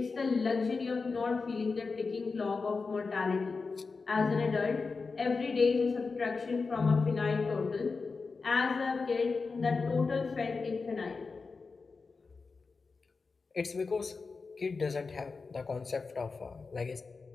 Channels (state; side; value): quieter; right; 4.4 dB